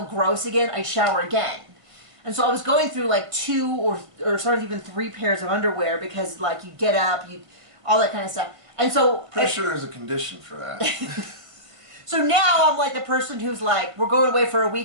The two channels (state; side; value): late; left; 1.6 ms